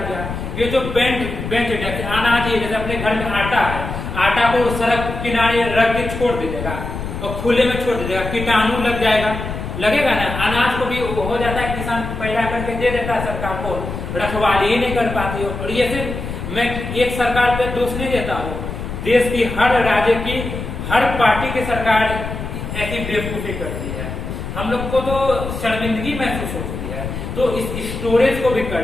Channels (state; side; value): noise; left; rumble, 6 dB below the sound